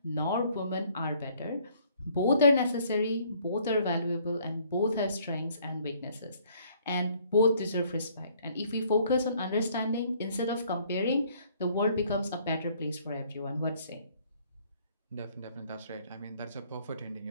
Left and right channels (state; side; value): inverted; both; correlation -0.62